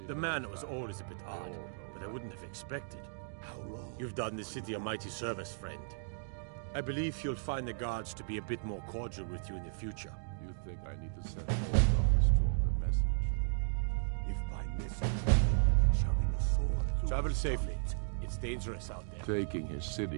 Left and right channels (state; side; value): silent; left; digital silence